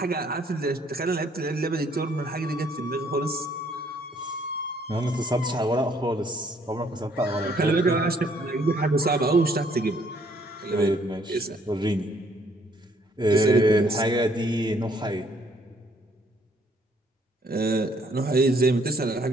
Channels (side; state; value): both; normal; correlation 0.65